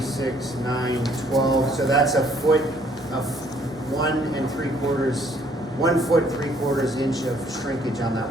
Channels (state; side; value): normal; both; correlation 0.63